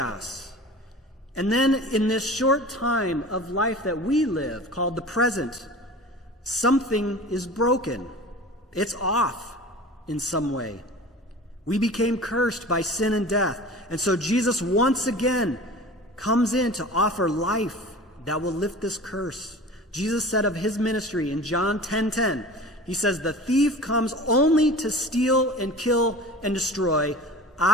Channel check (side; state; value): both; normal; correlation 0.38